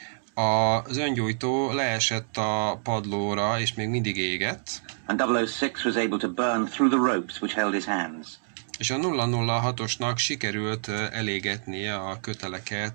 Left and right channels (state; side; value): silent; left; digital silence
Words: Az öngyújtó leesett a padlóra, és még mindig égett. And 006 was able to burn through the ropes which held his hands. És a 006-osnak sikerült elégetnie a